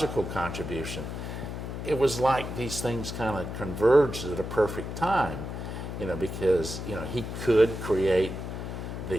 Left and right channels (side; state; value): left; noise; hum, 6 dB below the sound